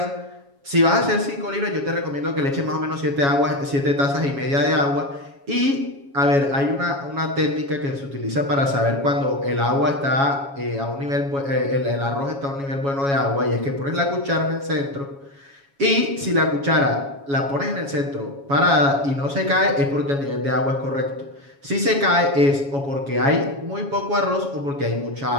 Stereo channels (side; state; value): left; late; 7.2 ms